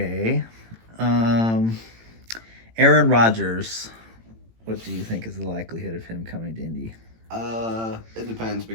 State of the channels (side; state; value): left; late; 18 ms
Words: Um, Aaron Rodgers. What do you think is the likelihood of him coming to Indy? It depends